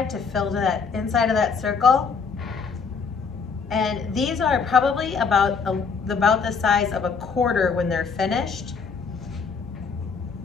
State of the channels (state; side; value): quieter; right; 5.5 dB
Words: to fill to that inside of that circle. And these are probably about the size of a quarter when they're finished.